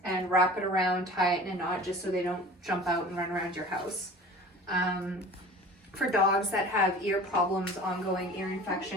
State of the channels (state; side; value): normal; both; correlation 0.42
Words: and wrap it around, tie it in a knot just so they don't jump out and run around your house. For dogs that have ear problems, ongoing ear